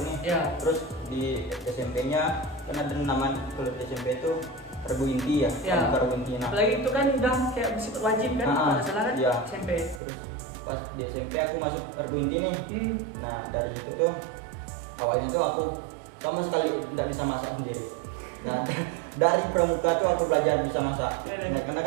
nih. Ya. Terus di SMP-nya kan ada nama kalau di SMP itu Regu Inti ya. Regu Inti. Nah, apalagi itu kan udah kayak bersifat wajib kan, kalau salah kan ya. SMP. Terus pas di SMP aku masuk Regu Inti nih. Nah dari situ tuh awalnya tuh aku sama sekali tidak bisa masak sendiri. Nah dari pramuka tuh aku belajar bisa masak. Nah karena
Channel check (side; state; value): left; drops out; at 10.0 s